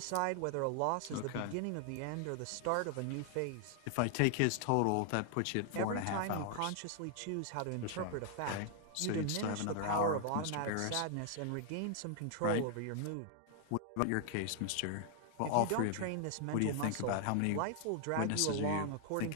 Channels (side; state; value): both; different; correlation 0.00